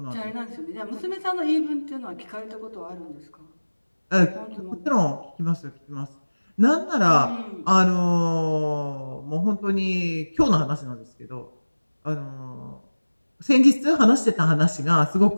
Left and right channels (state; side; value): inverted; both; correlation -1.00